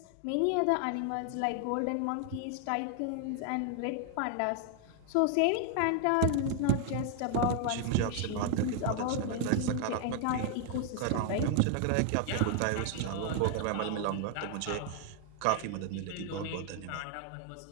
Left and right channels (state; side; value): different; both; correlation 0.00